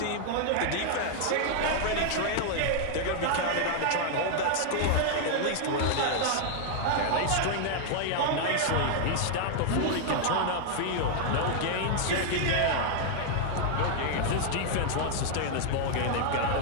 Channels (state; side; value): different; both; correlation 0.00